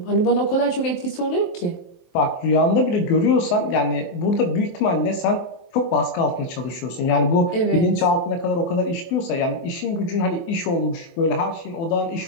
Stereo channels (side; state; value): right; late; 23 ms